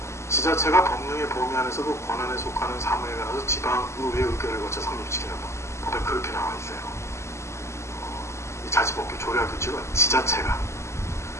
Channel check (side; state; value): right; late; 0.13 ms